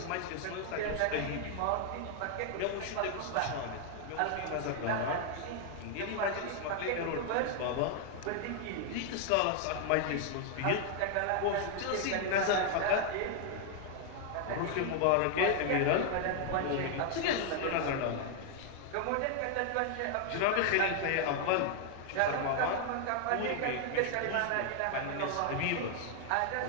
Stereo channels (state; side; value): different; both; correlation 0.00